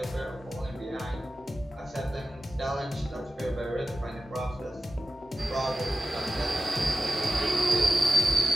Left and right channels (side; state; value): both; normal; correlation 0.92